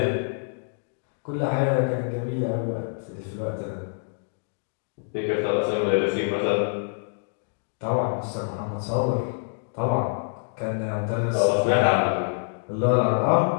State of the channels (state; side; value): silent; right; digital silence